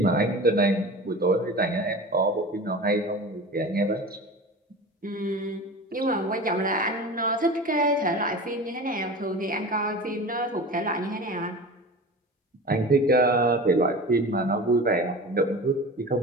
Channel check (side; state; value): both; normal; correlation 0.33